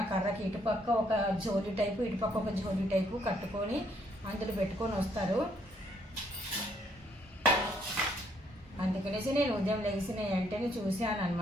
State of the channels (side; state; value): both; normal; correlation 0.69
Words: ఆ కర్రకి ఇటుపక్క ఒక జోలి టైపు ఇటుపక్క ఒక జోలి టైపు కట్టుకొని అందులో పెట్టుకొని వస్తారు. అందుకనేసి నేను ఉదయం లెగిసిన వెంటనే చూశాను